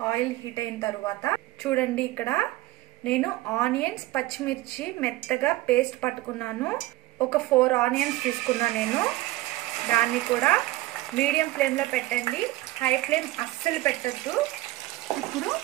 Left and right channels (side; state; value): left; quieter; 18.0 dB